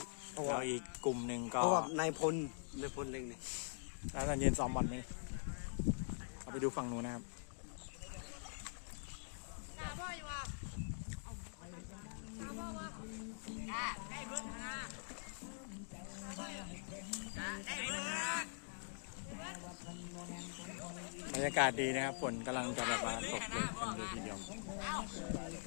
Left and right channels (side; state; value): right; silent; digital silence